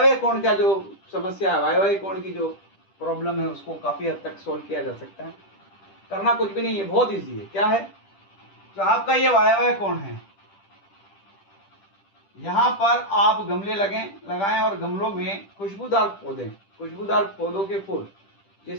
कोण का जो समस्या है, वायव्य कोण की जो प्रॉब्लम है, उसको काफी हद तक सोल्व किया जा सकता है। करना कुछ भी नहीं है, बहुत इजी है। क्या है, जो आपका ये वायव्य कोण है, यहाँ पर आप गमले लगाएं और गमलों में खुशबूदार पौधों के फूल,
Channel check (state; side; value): late; right; 10 ms